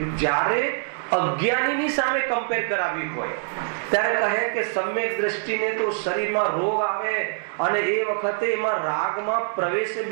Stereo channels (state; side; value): silent; left; digital silence